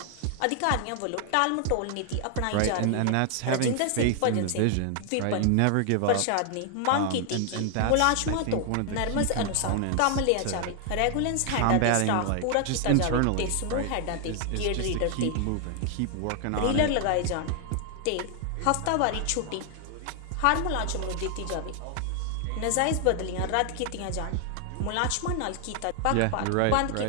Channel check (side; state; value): both; different; correlation 0.00